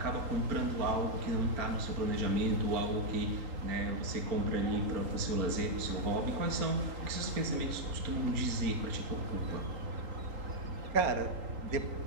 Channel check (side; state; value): left; late; 3.8 ms